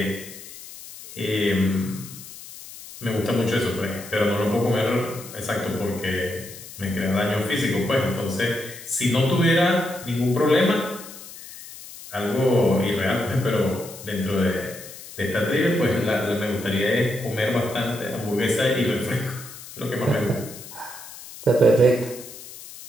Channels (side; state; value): left; noise; hiss, 15 dB below the sound